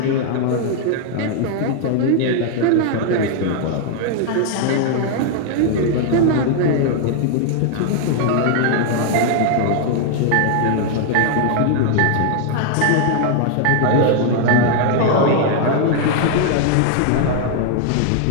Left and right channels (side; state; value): both; different; correlation 0.00